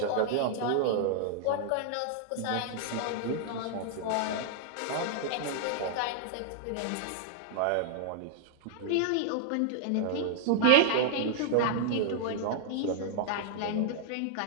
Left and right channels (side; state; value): both; different; correlation 0.00